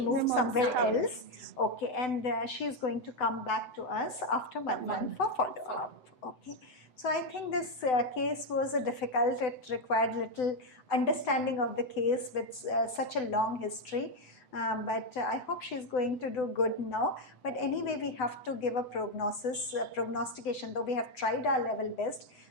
somewhere else. Okay, and she is going to come back to us after 1 month for follow-up. Okay, so I think this case was difficult. It required little understanding of the case with such a long history. But I hope she's going to do good now. But anyway, we have to give a prognostication, though we have tried our level best.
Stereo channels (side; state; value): right; late; 7.9 ms